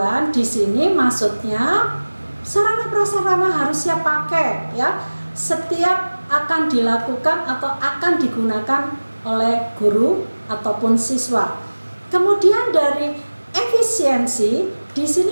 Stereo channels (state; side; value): inverted; both; correlation -1.00